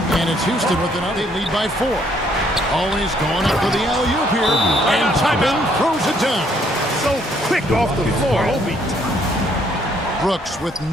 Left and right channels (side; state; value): both; normal; correlation 0.67